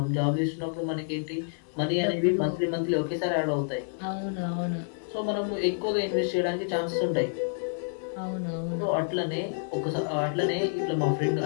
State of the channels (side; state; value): right; silent; 59 dB below the other